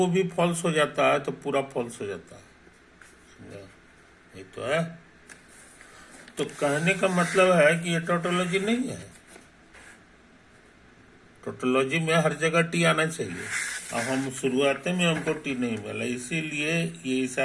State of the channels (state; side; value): identical; both; correlation 1.00